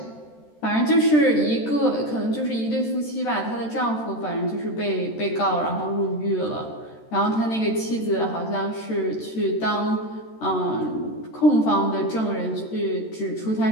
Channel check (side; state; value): right; late; 13 ms